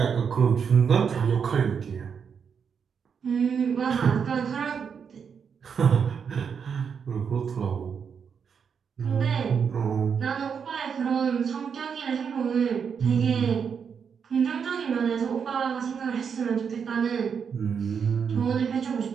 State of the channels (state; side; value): quieter; left; 6.7 dB